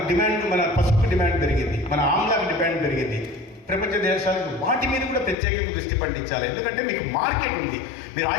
డిమాండ్, మన పసుపు డిమాండ్ పెరిగింది, మన ఆమ్లాకి డిమాండ్ పెరిగింది. ప్రపంచ దేశాలకు వాటి మీద కూడా ప్రత్యేకంగా దృష్టి పండించాలి. ఎందుకంటే మీకు మార్కెట్ ఉంది. మీరు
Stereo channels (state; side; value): drops out; right; at 5.4 s